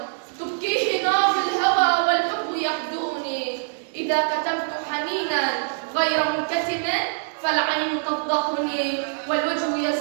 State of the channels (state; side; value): silent; left; digital silence